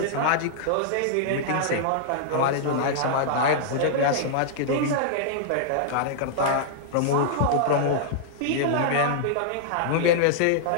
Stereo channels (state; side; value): different; both; correlation -0.01